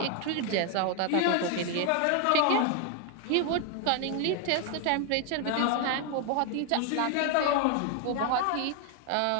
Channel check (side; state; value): both; different; correlation 0.01